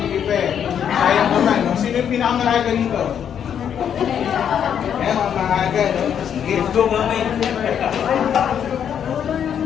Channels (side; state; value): right; quieter; 8.6 dB